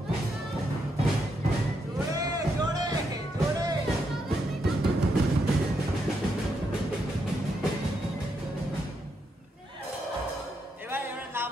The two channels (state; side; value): normal; both; correlation 0.80